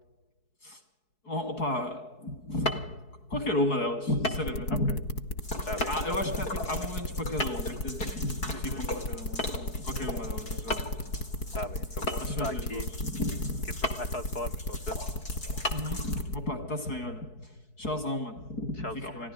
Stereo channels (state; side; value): late; right; 4.7 ms